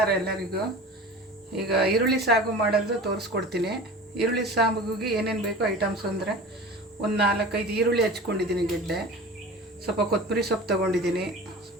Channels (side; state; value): both; normal; correlation 0.36